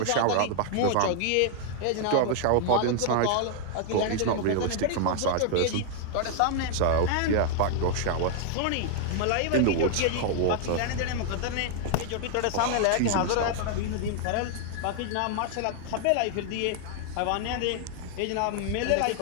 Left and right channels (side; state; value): both; different; correlation 0.00